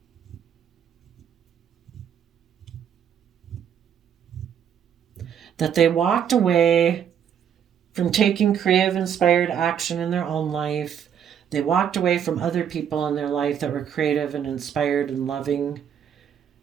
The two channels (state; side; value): quieter; left; 8.6 dB